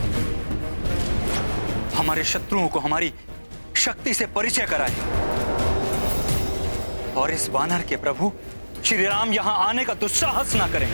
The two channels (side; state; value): both; inverted; correlation -1.00